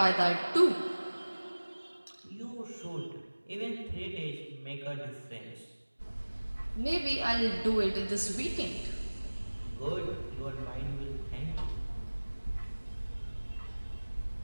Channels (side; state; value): both; inverted; correlation -1.00